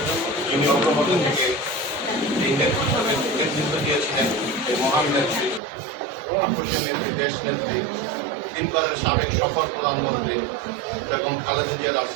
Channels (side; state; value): left; drops out; at 5.6 s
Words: যিনি অগ্রগতি থেকে এই নেতৃত্ব দিয়েছিলেন, এই মহান নেত্রী, আপসের নেত্রী, দেশ নেত্রী, তিনবারের সাবেক সফল প্রধানমন্ত্রী এবং খালেদা জিয়ার